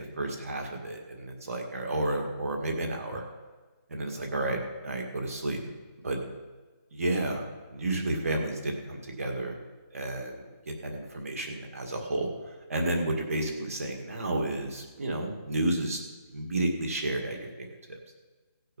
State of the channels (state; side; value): inverted; both; correlation -0.72